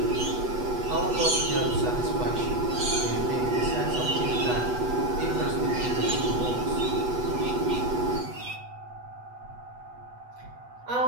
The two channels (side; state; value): left; late; 8.1 ms